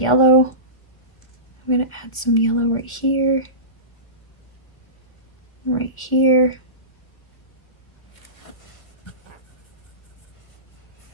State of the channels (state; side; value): late; right; 1.8 ms